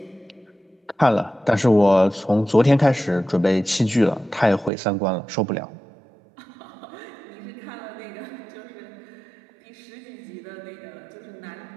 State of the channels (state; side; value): drops out; left; at 4.7 s